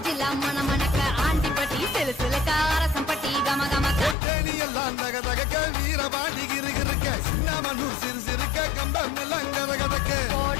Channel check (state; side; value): drops out; right; at 4.2 s